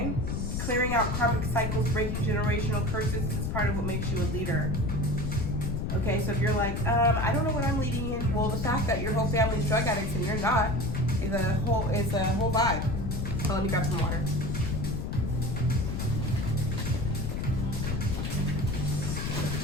clearing out karmic cycles, breaking generational curses. This is part of what makes you a leader. Okay, so if you're like, I don't know what I'm leading in, well, the fact that your whole family's drug addicts and you're not is a whole vibe. So let me grab some water.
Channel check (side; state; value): left; noise; rumble, 2 dB below the sound